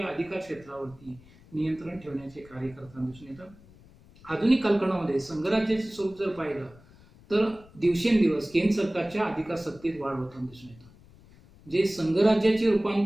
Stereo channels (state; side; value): noise; left; rumble, 24 dB below the sound